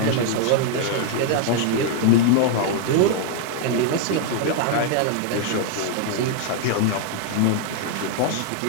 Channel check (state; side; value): different; both; correlation 0.00